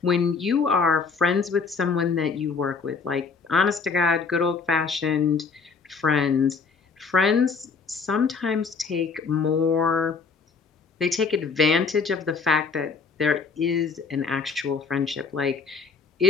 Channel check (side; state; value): right; quieter; 5.1 dB